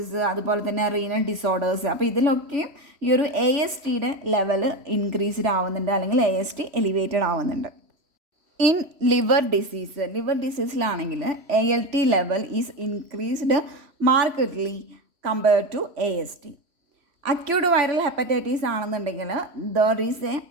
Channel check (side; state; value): left; late; 3.1 ms